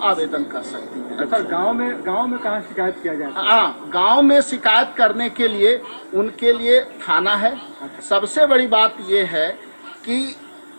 आवेदन कर सकती हैं। अच्छा, गांव में कहाँ शिकायत किया जाता है? हाँ, गांव में शिकायत करने के लिए उनके लिए थाना है। सबसे बड़ी बात ये है कि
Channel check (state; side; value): inverted; both; correlation -1.00